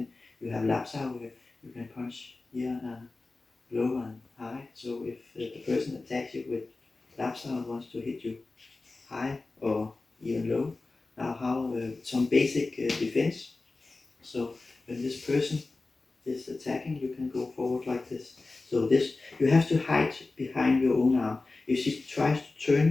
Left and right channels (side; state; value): right; quieter; 3.5 dB